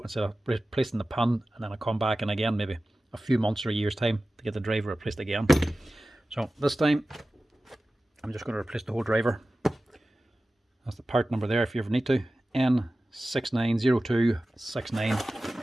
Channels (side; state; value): both; normal; correlation 0.96